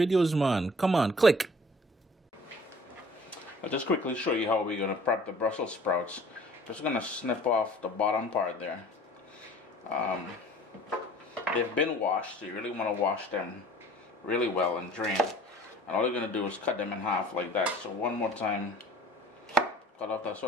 man. Come on, click. I'll just quickly show you how we're going to prep the Brussels sprouts. Just going to snip off the bottom part there. They've been washed, so you really want to wash them really well and drain. And all you're going to do is cut them in half like that. So one more time, cut off that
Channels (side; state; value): both; normal; correlation 0.49